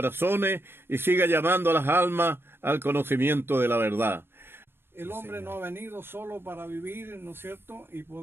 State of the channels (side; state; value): left; late; 0.11 ms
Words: y siga llamando a las almas al conocimiento de la verdad. El hombre no ha venido solo para vivir, ¿no es cierto? Y